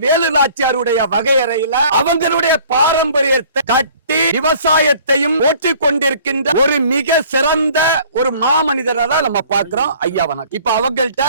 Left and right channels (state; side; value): inverted; both; correlation -0.53